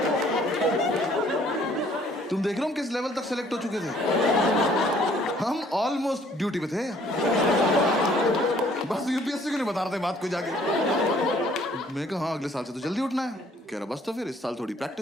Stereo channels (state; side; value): normal; both; correlation 0.60